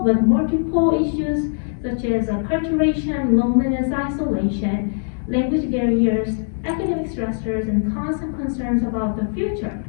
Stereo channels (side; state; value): right; silent; 65 dB below the other